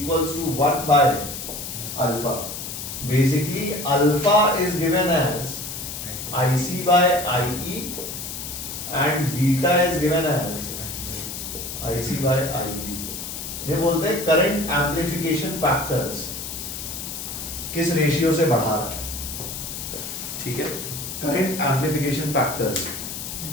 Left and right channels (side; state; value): left; noise; hiss, 7 dB below the sound